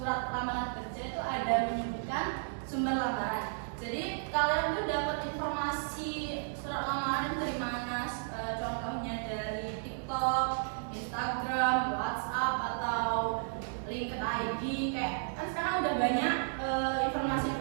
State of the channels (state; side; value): silent; left; digital silence